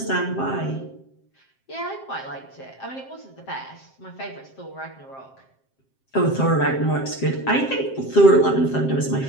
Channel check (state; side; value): late; right; 7.6 ms